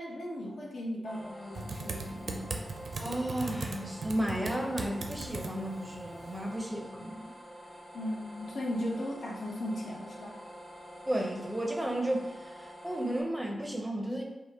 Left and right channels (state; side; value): normal; both; correlation 0.92